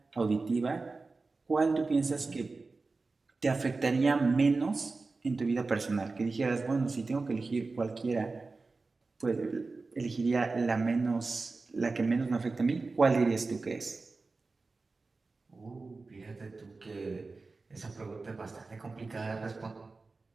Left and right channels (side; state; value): left; quieter; 3.8 dB